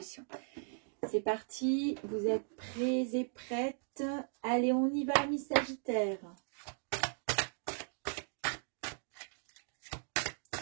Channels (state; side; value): silent; left; digital silence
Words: C'est parti, vous êtes prêts et prêtes? Allez, on y va, mes Sagittaires.